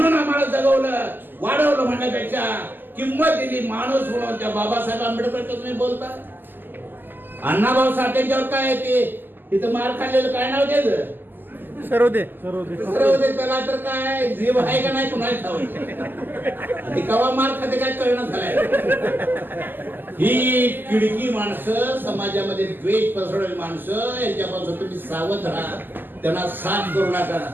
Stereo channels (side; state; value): left; late; 0.092 ms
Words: आम्हाला जगवलं, वाढवलं, म्हणण्यापेक्षा किंमत दिली माणूस म्हणून, त्या बाबासाहेब आंबेडकर तुम्ही बोलता. अण्णाभाऊ साठेंच्यावर काय ते तिथं मार खाल्लेलं काय नाव त्याचं? सर्वदे. त्याला तर काय जीव आहे का नाही कुणाला ठाऊक. कवा मार खाते काय कळणं झालंय. ही किडकी माणसं, समाजामध्ये द्वेष पसरवणारी माणसं, यांच्यापासून तुम्ही सावध राहा, त्यांना साथ करू नका.